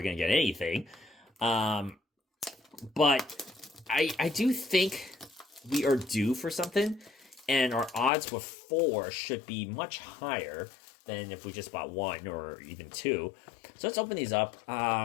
going to get anything. But I do think we are due for something. And our odds with 4 should be much higher than if we just bought 1 or even 2. So let's open these up.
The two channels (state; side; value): drops out; right; at 8.1 s